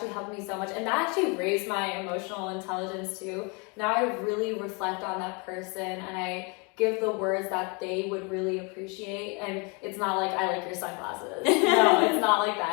helped me so much. And that actually raised my emotional intelligence too. Now I really reflect on that person and I give the words that they would really appreciate. And it's not like, I like your sunglasses. No, it's not like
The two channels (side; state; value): right; quieter; 32.2 dB